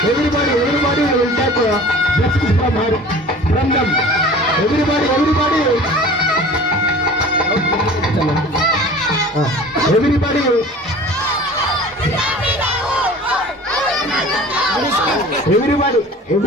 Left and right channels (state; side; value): normal; both; correlation 0.43